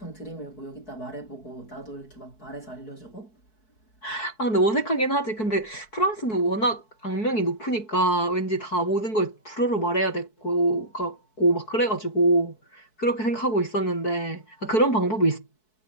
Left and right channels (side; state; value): right; late; 4.6 ms